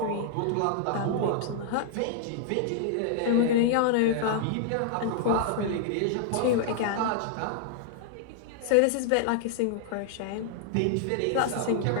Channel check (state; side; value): different; both; correlation -0.01